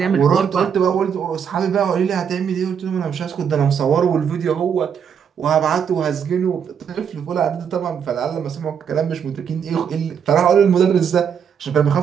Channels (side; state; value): left; quieter; 7.5 dB